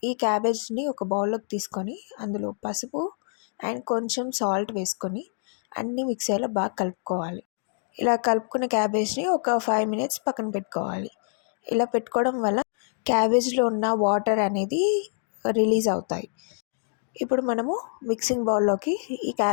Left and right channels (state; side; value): silent; right; digital silence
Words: ఈ క్యాబేజ్ని ఒక బౌల్లోకి తీసుకొని అందులో పసుపు అండ్ కొంచెం సాల్ట్ వేసుకొని అన్నీ మిక్స్ అయ్యేలా బాగా కలుపుకోవాలి. ఇలా కలుపుకున్న క్యాబేజ్ని ఒక 5 మినిట్స్ పక్కన పెట్టుకోవాలి. ఇలా పెట్టుకోవడం వల్ల క్యాబేజ్లో ఉన్న వాటర్ అనేది రిలీజ్ అవుతాయి. ఇప్పుడు మనము మిక్సింగ్ బౌల్లోకి ఈ